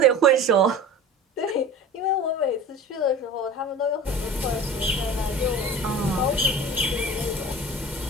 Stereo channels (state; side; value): normal; both; correlation 0.37